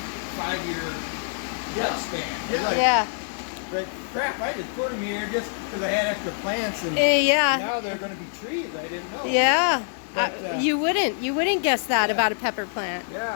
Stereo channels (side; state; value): right; silent; digital silence